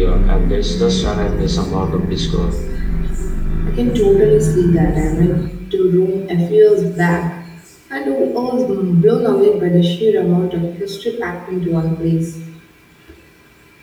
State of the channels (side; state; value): both; identical; correlation 1.00